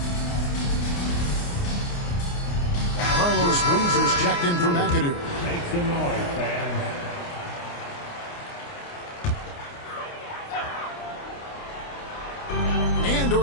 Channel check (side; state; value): right; late; 29 ms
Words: Carlos Bleezer's checked in for McAdoo. Make some noise, fans. And